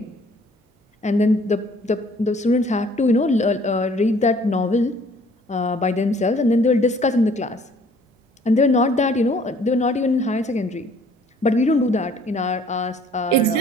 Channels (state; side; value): normal; both; correlation 0.57